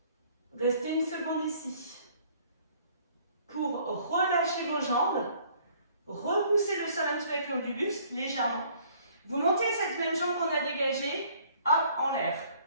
Restez une seconde ici. Pour relâcher vos jambes, repoussez le sol un petit peu avec le haut du buste, légèrement. Vous montez cette même jambe qu'on a dégagée, hop, en l'air.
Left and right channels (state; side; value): inverted; both; correlation -0.59